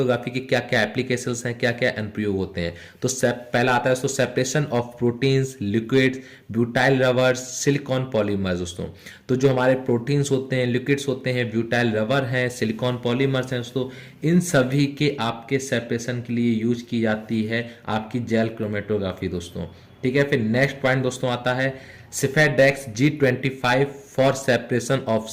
के क्या क्या एप्लीकेशंस हैं, क्या क्या अनुप्रयोग होते हैं। तो पहला आता है दोस्तों separation of proteins, liquids, butyl rubbers, silicon polymers दोस्तों। तो जो हमारे प्रोटीन्स होते हैं, लिक्विड्स होते हैं, ब्यूटाइल रबर हैं, सिलिकॉन पॉलीमर्स हैं दोस्तों, इन सभी के आपके सेपरेशन के लिए यूज की जाती है आपकी जेल क्रोमेटोग्राफी दोस्तों। ठीक है, फिर नेक्स्ट पॉइंट दोस्तों आता है सिफेडेक्स G25 for separation of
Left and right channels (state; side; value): identical; both; correlation 1.00